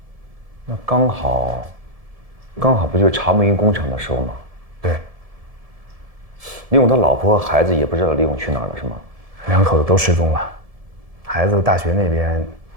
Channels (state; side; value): late; left; 1.7 ms